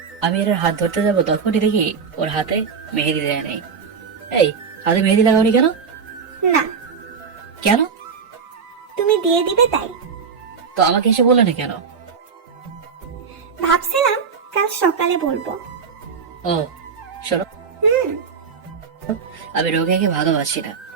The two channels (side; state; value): left; quieter; 5.9 dB